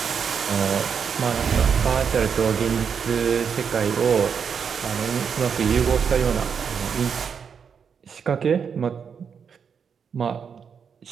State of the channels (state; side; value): quieter; left; 6.7 dB